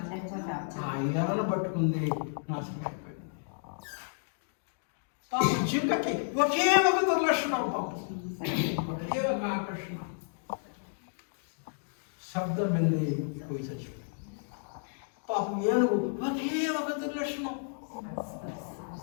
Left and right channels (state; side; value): silent; right; digital silence